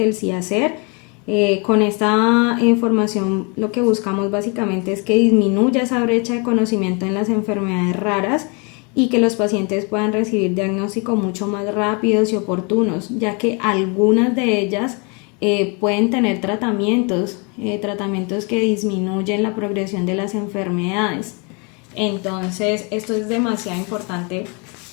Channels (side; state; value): right; quieter; 32.9 dB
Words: el CIASER. Con esta información lo que buscamos básicamente es que disminuya esa brecha de conocimiento en las enfermedades raras y que los pacientes puedan recibir diagnósticos mucho más rápidos y oportunos, ya que algunas de ellas pueden tener tratamientos que disminuyen la progresión de las enfermedades. Entonces esto es demasiado importante